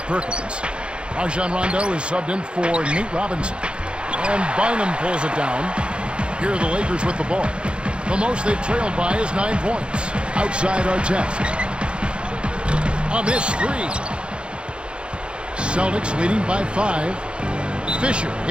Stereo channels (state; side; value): late; left; 0.056 ms